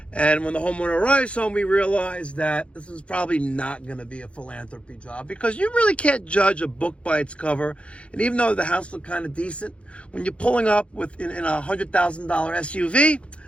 and when the homeowner arrives home, we realize that this is probably not going to be a philanthropy job, because you really can't judge a book by its cover. And even though the house looked kind of decent, when you're pulling up in a $100,000 SUV,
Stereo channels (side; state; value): right; late; 0.060 ms